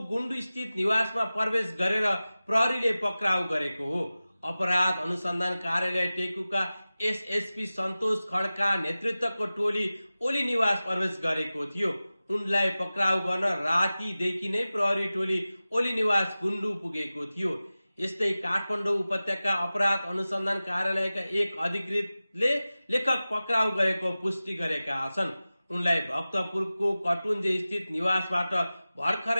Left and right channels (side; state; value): both; inverted; correlation -0.96